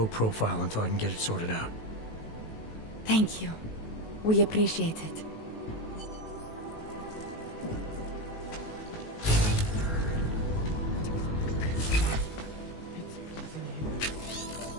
profile until I can get it sorted out. Thank you. We appreciate it.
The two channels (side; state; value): right; late; 18 ms